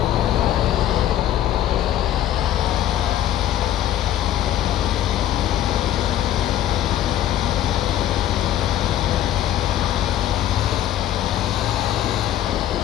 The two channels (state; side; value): quieter; right; 12.1 dB